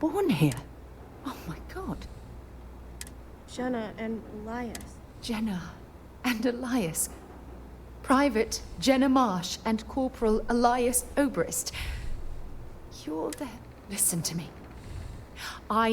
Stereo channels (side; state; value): both; identical; correlation 1.00